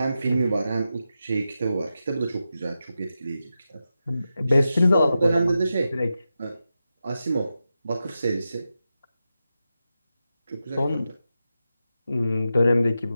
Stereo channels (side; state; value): both; inverted; correlation -0.90